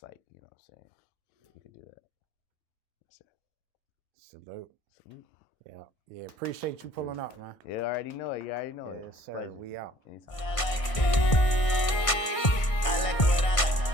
you know what I'm saying? You can do that. That's it. Salute. Yeah. Appreciate you pulling up, man. Yeah, I already know it. Yes, sir. We out. Anytime.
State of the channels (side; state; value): right; late; 1.5 ms